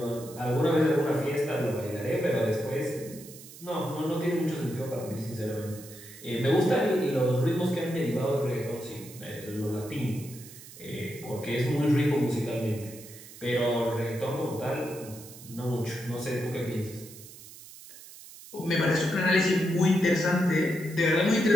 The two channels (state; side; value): noise; right; hiss, 17 dB below the sound